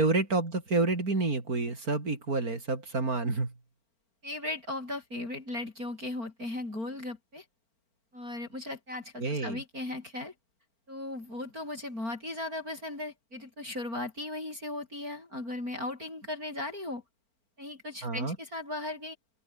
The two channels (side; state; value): left; late; 4.4 ms